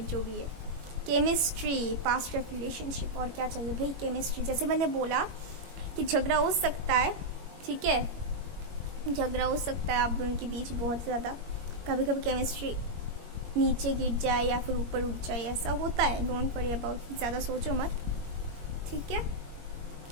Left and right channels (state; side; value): late; left; 21 ms